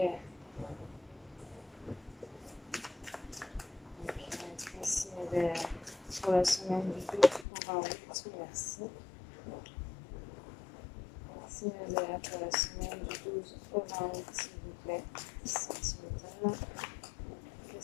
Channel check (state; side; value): drops out; right; at 7.5 s